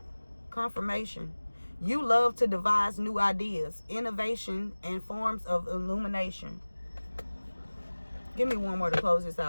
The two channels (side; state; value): both; inverted; correlation -1.00